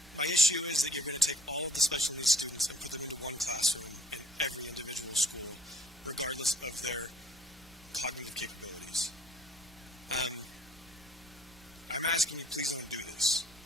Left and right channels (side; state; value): both; normal; correlation 0.57